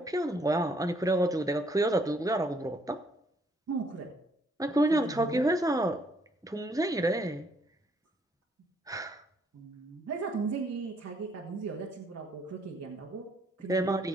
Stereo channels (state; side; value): normal; both; correlation 0.68